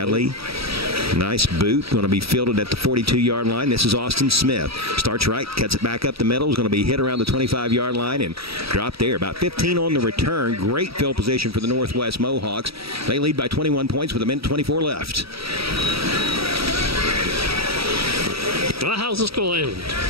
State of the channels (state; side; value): late; left; 0.76 ms